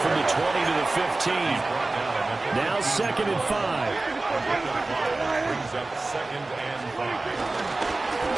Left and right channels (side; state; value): left; quieter; 3.1 dB